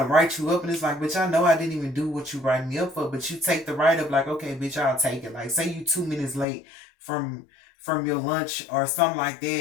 write you up, and it's like, bitch, I know I didn't even do what you writing me up for, but you take the write up like, okay, bitch, I'll take it. Like, say you 2 minutes late from your lunch or something like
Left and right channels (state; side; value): drops out; right; at 6.5 s